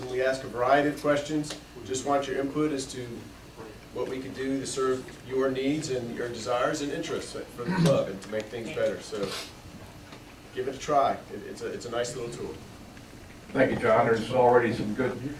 we ask a variety of questions. Just want your input as to what we can do to serve your needs and your desires and interests for the club and to make things better. So give it a try. It's a nice little tool. Thank you, John. There's already some good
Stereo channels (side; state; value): both; identical; correlation 1.00